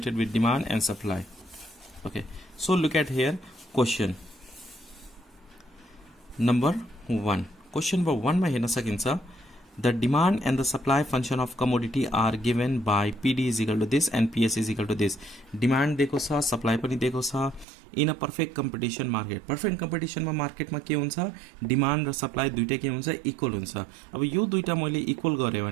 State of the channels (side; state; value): left; drops out; at 17.7 s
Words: with demand and supply. Okay, so look at here question number 1. Question number 1 मा हेर्न सकिन्छ the demand and the supply function of commodity are given by PD is equal to this and PS is equal to this. Demand दिएको छ, supply पनि दिएको छ. In a perfect competition market, perfect competition मा market मा के हुन्छ? Demand र supply दुईटै के हुन्छ? Equal हुन्छ. अब यो दुईटा मैले equal गरे